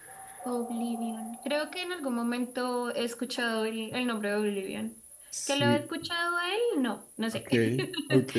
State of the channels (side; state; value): both; identical; correlation 1.00